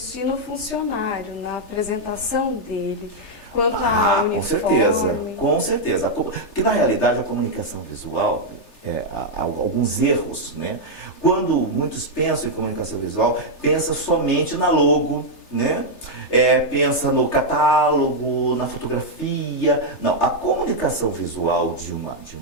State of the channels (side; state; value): right; late; 3.3 ms